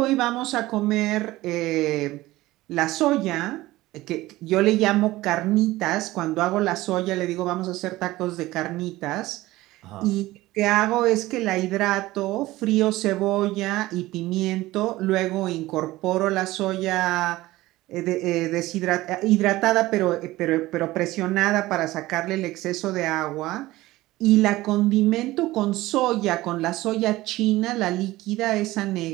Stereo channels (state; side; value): quieter; left; 17.8 dB